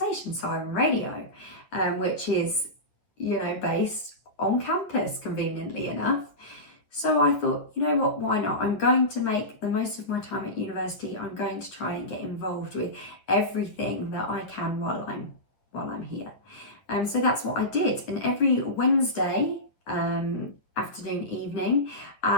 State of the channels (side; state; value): right; late; 9.5 ms